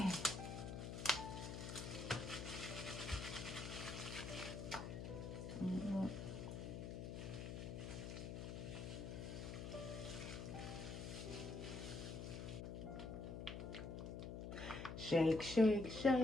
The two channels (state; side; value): noise; left; hum, 6 dB below the sound